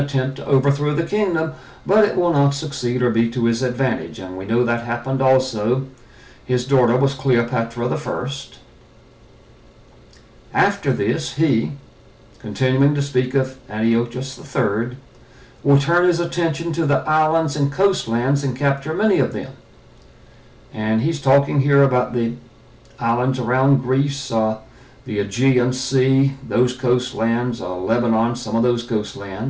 to overthrow the kingdom, but it will not succeed or be to his advantage. And we know that happened also. His daughter was Cleopatra the First. After this, he, continuing to speak of Antiochus III, will turn his attention to the islands and coastlands and capture many of them. And he's talking here about the islands around Greece, the Aegean Sea, those coastlands, Lebanon, some of those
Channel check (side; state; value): both; identical; correlation 1.00